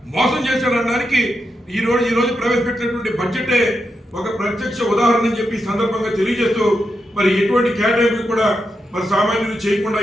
మోసం చేశారనడానికి ఈ రోజు ప్రవేశపెట్టినటువంటి బడ్జెటే ఒక ప్రత్యక్ష ఉదాహరణ అని చెప్పి సందర్భంగా తెలియజేస్తూ మరి ఎటువంటి కేటాయింపులు కూడా మరి సామాన్యులు చేయకుండా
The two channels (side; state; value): both; normal; correlation 0.86